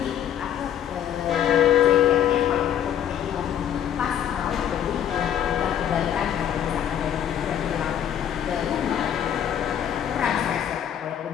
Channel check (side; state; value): right; quieter; 9.8 dB